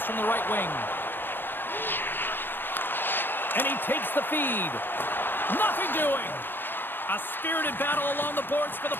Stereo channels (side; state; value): right; late; 0.098 ms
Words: from the right wing. And he takes the feed. Nothing doing. A spirited battle along the boards for the